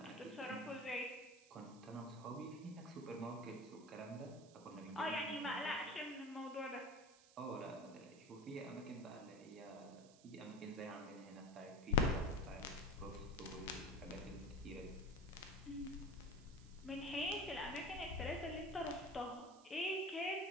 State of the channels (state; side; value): noise; right; hiss, 22 dB below the sound